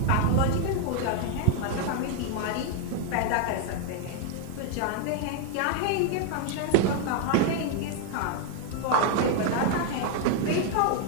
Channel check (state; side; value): different; both; correlation 0.00